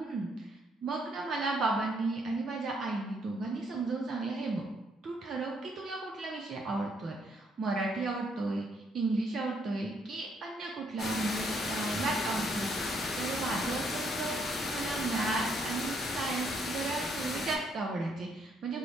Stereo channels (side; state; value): both; normal; correlation 0.71